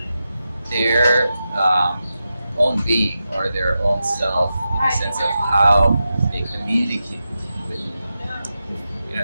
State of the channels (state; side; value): inverted; both; correlation -0.90